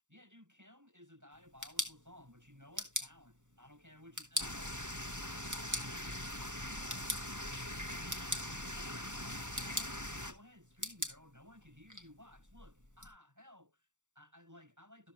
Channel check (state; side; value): late; left; 0.86 ms